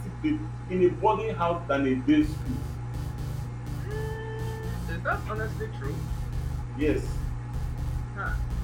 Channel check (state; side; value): identical; both; correlation 1.00